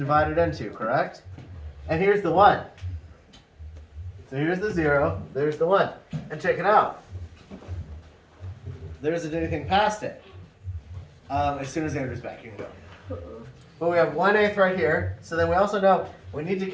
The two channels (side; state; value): both; identical; correlation 1.00